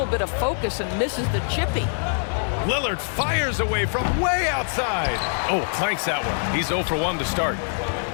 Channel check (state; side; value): silent; right; digital silence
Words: bit of focus and misses the chippy. Lillard fires away from way outside. Oh, clanks that one. He's 0 for 1 to start.